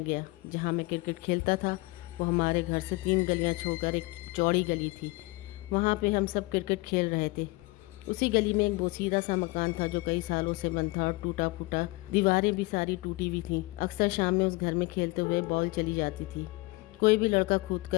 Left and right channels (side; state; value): right; quieter; 23.1 dB